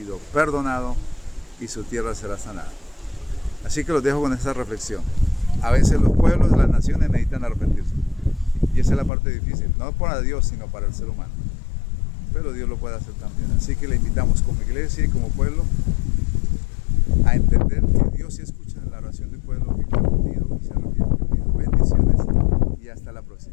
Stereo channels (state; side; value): drops out; right; at 9.1 s